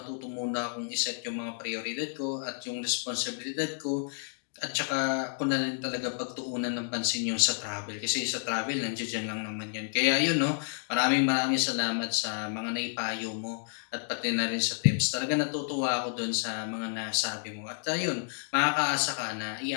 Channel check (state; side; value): silent; right; digital silence